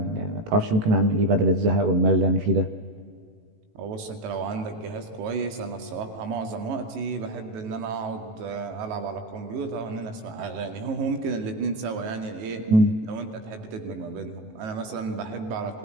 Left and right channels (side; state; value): left; late; 18 ms